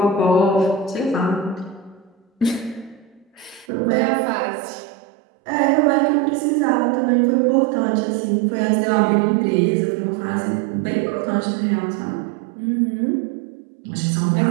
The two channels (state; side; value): drops out; left; at 3.7 s